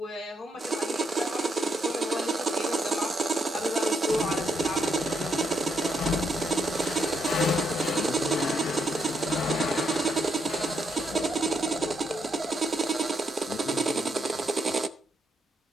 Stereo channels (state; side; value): normal; both; correlation 0.77